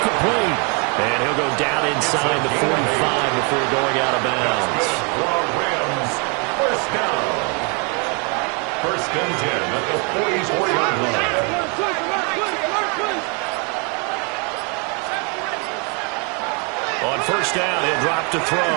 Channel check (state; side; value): quieter; left; 34.4 dB